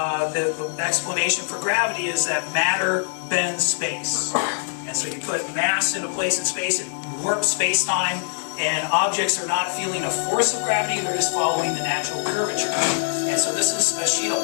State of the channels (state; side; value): silent; right; digital silence